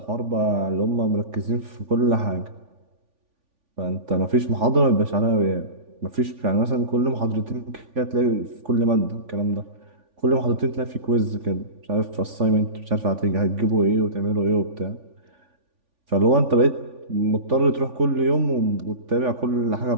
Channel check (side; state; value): left; late; 3.5 ms